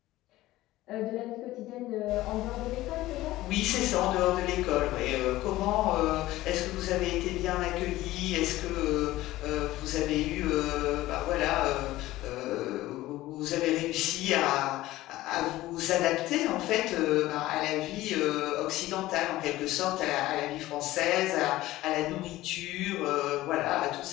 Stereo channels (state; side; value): quieter; right; 16.7 dB